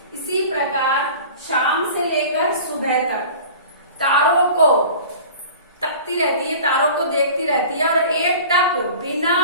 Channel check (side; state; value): both; inverted; correlation -0.41